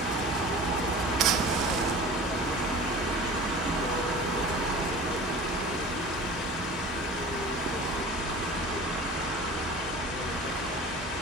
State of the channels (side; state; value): both; normal; correlation 0.39